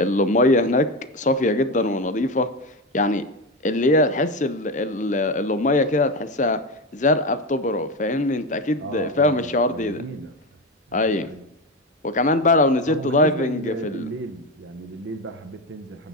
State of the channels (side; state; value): both; normal; correlation 0.17